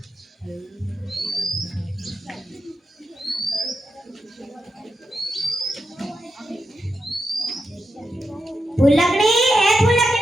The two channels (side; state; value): both; normal; correlation 0.87